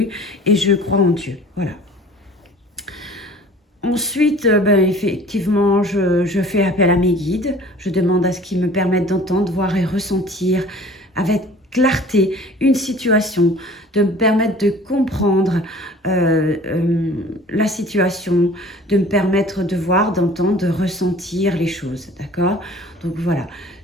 et je crois en Dieu. Voilà. Ensuite, ben, effectivement, je fais appel à mes guides. Je demande à ce qu'ils me permettent d'entendre, voir et ressentir avec clarté une situation, de me permettre de comprendre la situation, de me permettre de voir, d'entendre, de ressentir les choses, d'accord? Donc voilà,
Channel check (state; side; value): normal; both; correlation 0.47